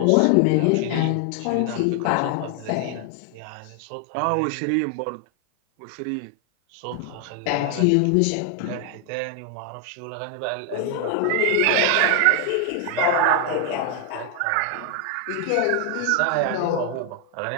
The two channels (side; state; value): both; different; correlation 0.00